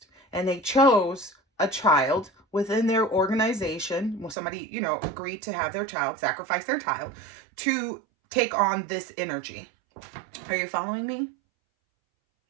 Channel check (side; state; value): left; drops out; at 4.4 s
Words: And they chose a child within their organization. Well, somebody, agreed to have their child, sacrifice their child to take on this energy. Are you following me?